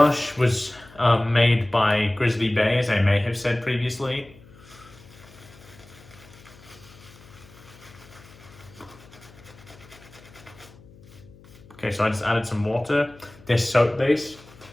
was made by Grizzly Bay, as I may have said previously. Okay, so I just added some water. This soap base,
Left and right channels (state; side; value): noise; left; hum, 23 dB below the sound